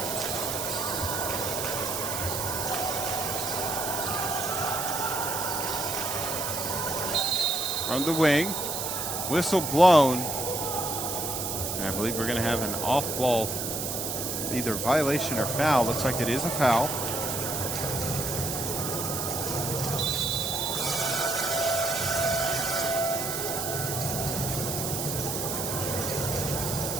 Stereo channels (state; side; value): noise; right; hiss, 3 dB below the sound